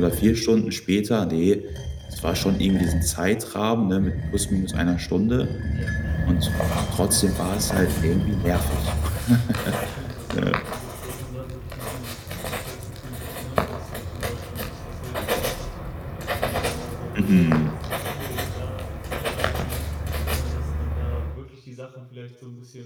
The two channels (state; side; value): identical; both; correlation 1.00